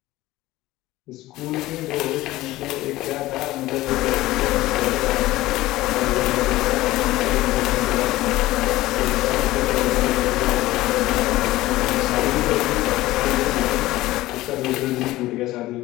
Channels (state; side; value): quieter; right; 17.3 dB